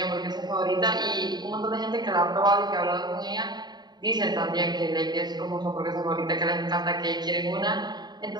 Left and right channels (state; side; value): late; left; 0.20 ms